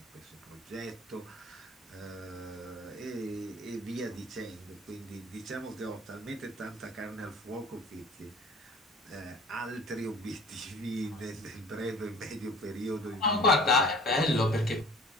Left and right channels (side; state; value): both; normal; correlation 0.46